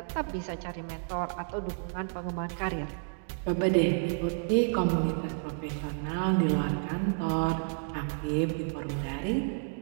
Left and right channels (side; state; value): left; silent; digital silence